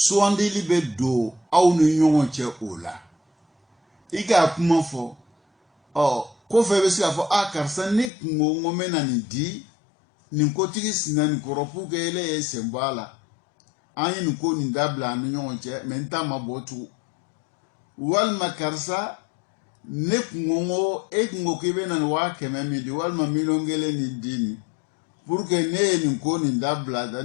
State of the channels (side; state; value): right; drops out; at 8.1 s